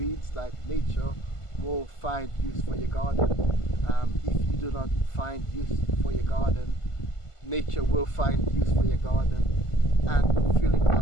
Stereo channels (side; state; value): right; late; 1.5 ms